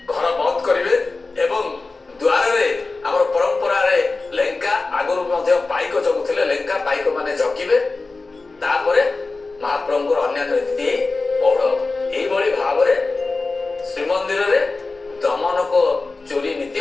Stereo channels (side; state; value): right; quieter; 3.7 dB